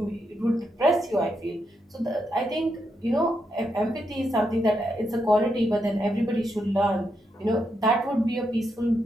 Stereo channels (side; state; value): both; normal; correlation 0.82